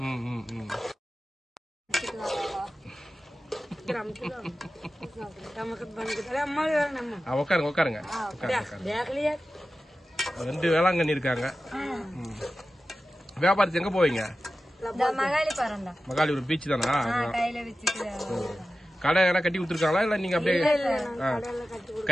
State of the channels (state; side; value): normal; both; correlation 0.94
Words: உட்காருங்க. 2 வேளாங்கண்ணி இருக்காங்க. வியாபாரத்துக்கு எங்க போவீங்க? மகாலிபுரம் பீச் தானா? கடை எல்லாம் கட்டி கொடுத்துருக்காங்களா இல்ல நீங்க அப்படியே